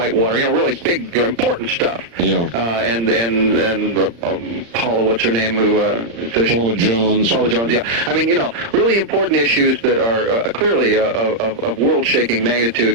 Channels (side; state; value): left; late; 35 ms